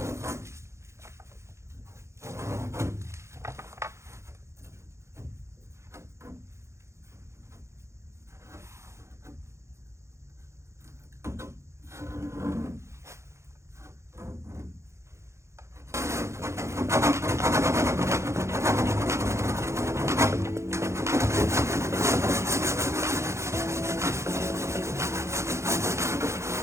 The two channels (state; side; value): late; left; 0.14 ms